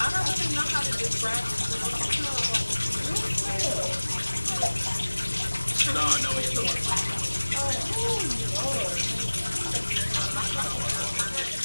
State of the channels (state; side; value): inverted; both; correlation -1.00